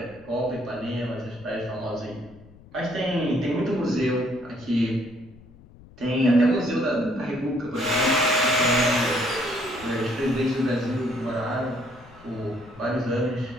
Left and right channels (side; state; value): left; noise; rumble, 23 dB below the sound